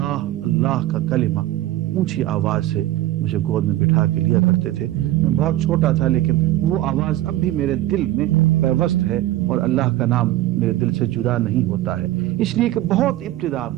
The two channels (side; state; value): left; quieter; 15.1 dB